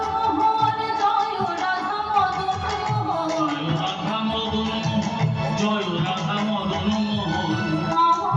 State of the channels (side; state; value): both; identical; correlation 1.00